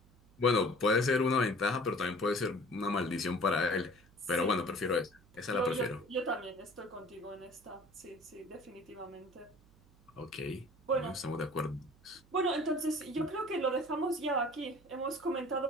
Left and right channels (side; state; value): right; noise; hum, 28 dB below the sound